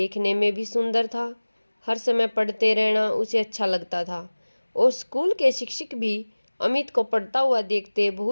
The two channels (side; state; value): both; inverted; correlation -1.00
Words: में भी सुंदर था। हर समय पढ़ते रहना उसे अच्छा लगता था और स्कूल के शिक्षक भी अमित को पढ़ता हुआ देखते